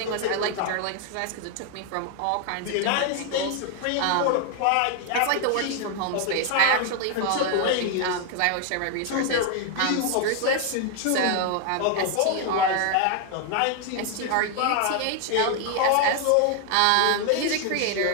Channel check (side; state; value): both; different; correlation 0.00